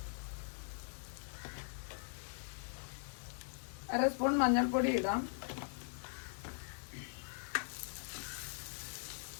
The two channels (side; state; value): right; silent; digital silence